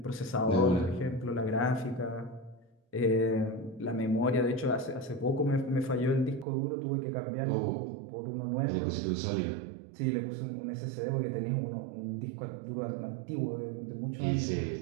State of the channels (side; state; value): left; drops out; at 6.5 s